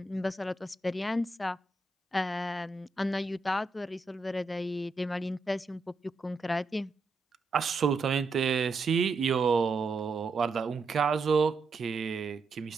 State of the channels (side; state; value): left; quieter; 3.5 dB